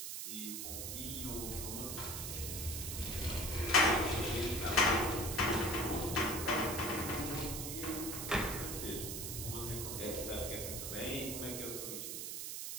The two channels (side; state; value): right; noise; hiss, 4 dB below the sound